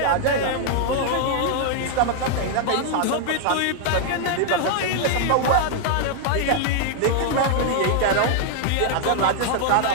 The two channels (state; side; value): different; both; correlation 0.00